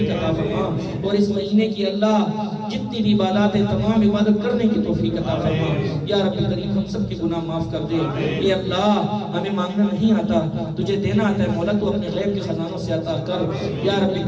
عطا فرما. اور اس مہینے کی اللہ جتنی بھی عبادات ہیں تمام عبادت کرنے کی توفیق عطا فرما. یا رب کریم ہم سب کے گناہ معاف کر دے. اے اللہ ہمیں مانگنا نہیں آتا, تجھے دینا آتا ہے مولا, تو اپنے غیب کے خزانوں سے عطا کر. یا رب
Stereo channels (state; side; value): identical; both; correlation 1.00